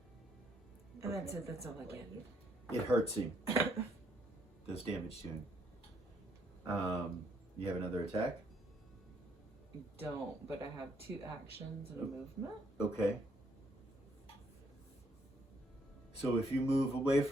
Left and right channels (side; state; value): both; normal; correlation 0.70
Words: And that's it, that's all I get. It hurts him. Does damage to him. You have another attack? I don't, but I have 2 actions and a movement. Okay. So if you move away